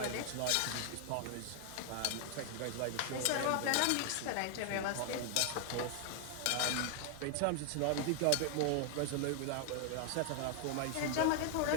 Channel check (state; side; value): different; both; correlation 0.00